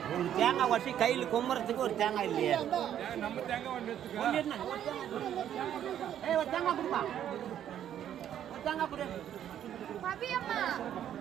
ஒரு தேங்காய் உடச்சி கையில் கும்புறதுக்கு ஒரு தேங்காய் இல்லையே. நம்ம தேங்காய் ஒன்று எடுத்துக்க. ஒண்ணு எடுத்துனா, ஏய் ஒரு தேங்காய் கொடுப்பா. ஒரு தேங்காய் கொடு. பவியம்மா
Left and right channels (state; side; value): quieter; left; 10.4 dB